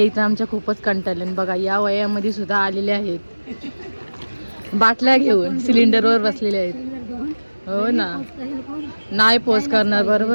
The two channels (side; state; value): both; inverted; correlation -1.00